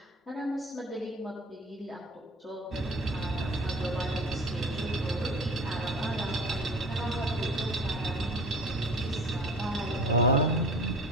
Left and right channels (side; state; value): both; normal; correlation 0.40